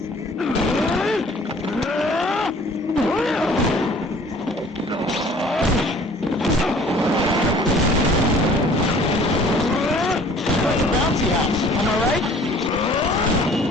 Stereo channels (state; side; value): normal; both; correlation 0.52